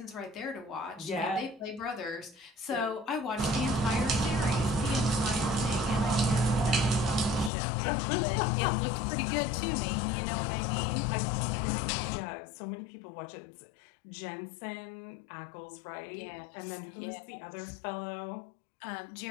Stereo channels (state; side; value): drops out; right; at 7.5 s